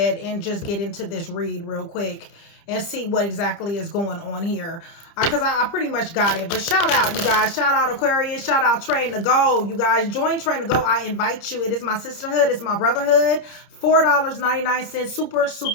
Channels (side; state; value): right; late; 30 ms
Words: and just get into this read real quick and see what exactly is going on here. Because I pretty much got it. But shout out, you guys. Shout out Aquarius. Shout out Train to Go. You guys, join Train to Go. I invite you. It is my sisterhood. It's my brotherhood. $4.99. Super,